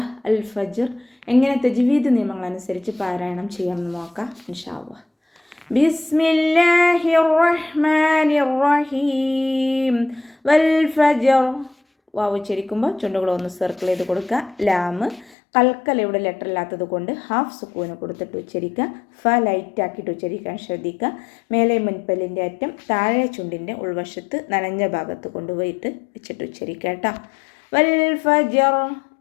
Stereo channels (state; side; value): drops out; right; at 15.4 s